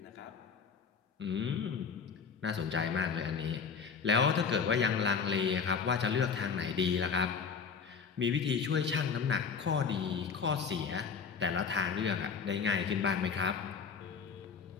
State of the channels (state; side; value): quieter; right; 6.0 dB